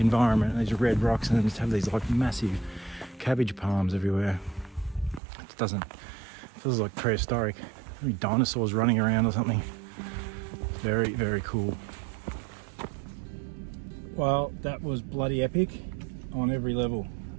These red rocks, and then just have these like massive cabbage palms everywhere. It feels like prehistoric. Maybe dinosaurs running around or something. Very, very cool. Well, that was bloody epic on every level.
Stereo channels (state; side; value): drops out; left; at 5.2 s